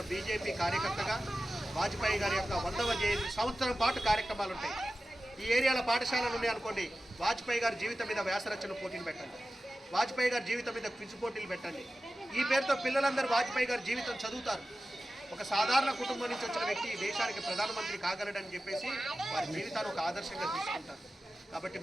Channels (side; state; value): both; normal; correlation 0.95